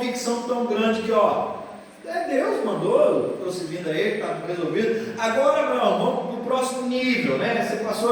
tão grande que, Deus mandou, estou seguindo a ele, está resolvido. Agora, Abraão, vamos para o próximo nível, né? Você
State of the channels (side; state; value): both; identical; correlation 1.00